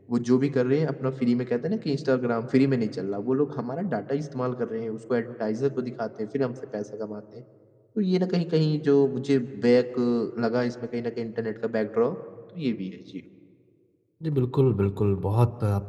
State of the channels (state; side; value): identical; both; correlation 1.00